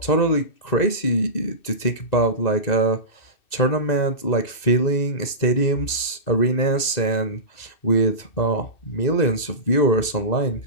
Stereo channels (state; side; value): late; right; 2.6 ms